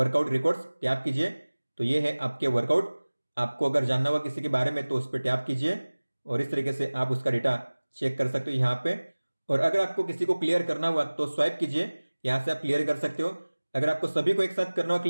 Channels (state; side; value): inverted; both; correlation -1.00